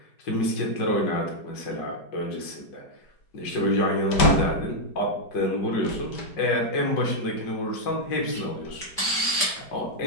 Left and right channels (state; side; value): late; right; 5.1 ms